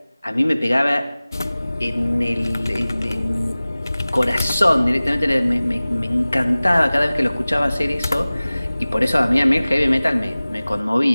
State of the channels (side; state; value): both; inverted; correlation -0.98